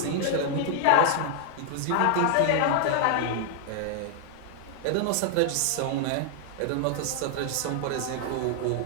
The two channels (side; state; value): both; different; correlation 0.00